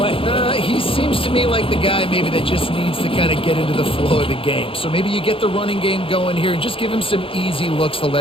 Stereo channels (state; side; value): late; right; 0.26 ms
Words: He seems to me like the guy maybe that just needs to kind of get into the flow of the game. So maybe you get the running game going here and just give him some easy looks to